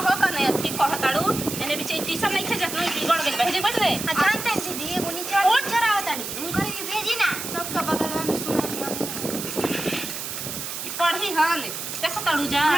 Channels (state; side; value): noise; right; hiss, 6 dB below the sound